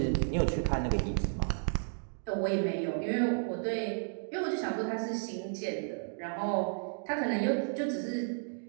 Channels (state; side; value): silent; left; digital silence